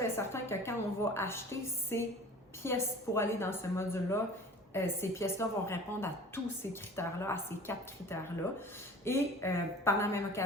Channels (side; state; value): both; normal; correlation 0.43